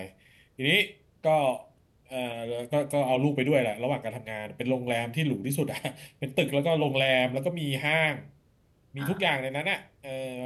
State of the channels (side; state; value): both; identical; correlation 1.00